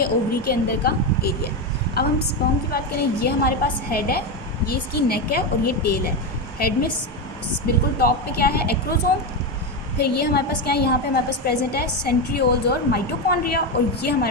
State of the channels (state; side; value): normal; both; correlation 0.12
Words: ओवरी के अंदर का एरिया है। अब हम स्पर्म की बात करें, ये हमारे पास हेड है, ये इसकी नेक है और ये टेल है। हेड में बिल्कुल टॉप पे क्या है, एक्रोसोम। फिर ये हमारे पास क्या है, यहाँ पे हमारे पास प्रेजेंट है सेंट्रियोल्स और माइटोकॉन्ड्रिया, और ये